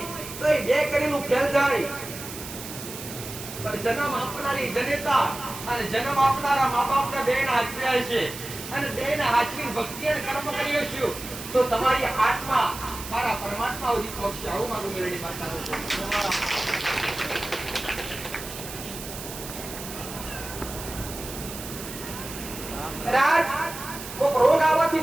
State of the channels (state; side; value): noise; right; hiss, 11 dB below the sound